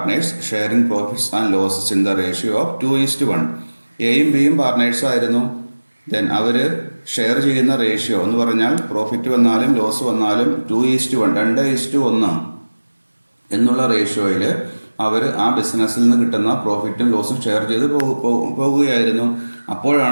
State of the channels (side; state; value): both; inverted; correlation -1.00